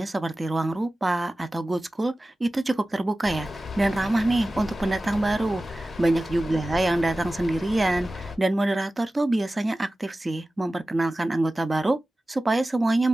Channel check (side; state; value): both; normal; correlation 0.96